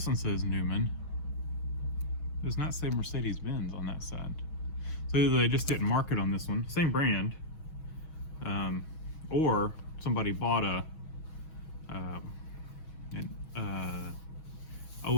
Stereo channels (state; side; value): late; right; 6.2 ms